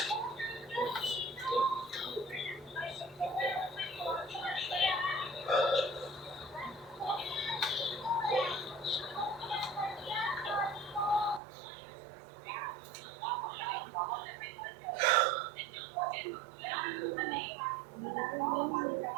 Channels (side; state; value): left; drops out; at 11.4 s